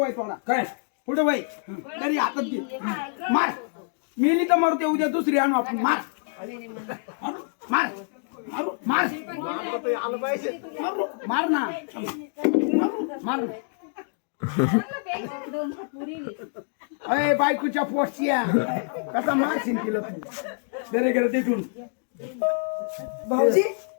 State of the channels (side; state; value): right; silent; 57 dB below the other